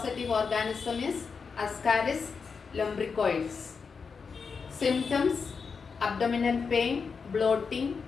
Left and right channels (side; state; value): right; quieter; 5.4 dB